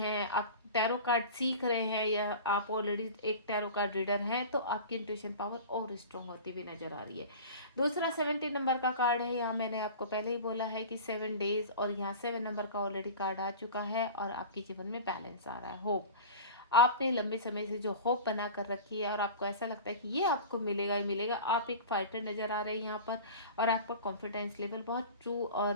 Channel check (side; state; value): both; inverted; correlation -0.36